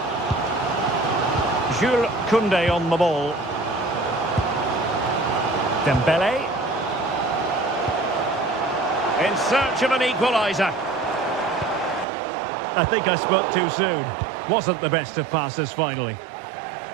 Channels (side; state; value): left; drops out; at 12.1 s